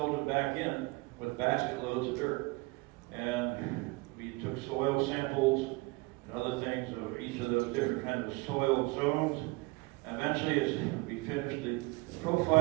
them back in with basket loads of dirt. And we took soil samples and other things of each of those different kinds of soil zones. Eventually, as we finished the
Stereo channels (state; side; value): quieter; left; 25.1 dB